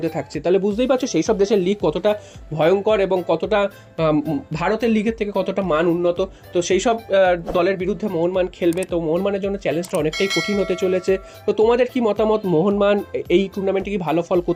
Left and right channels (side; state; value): both; identical; correlation 1.00